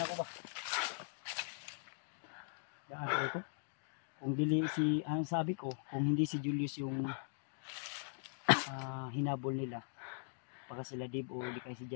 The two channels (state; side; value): silent; right; digital silence